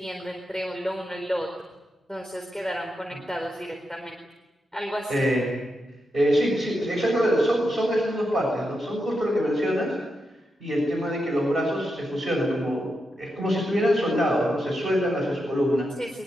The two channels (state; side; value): normal; both; correlation 0.86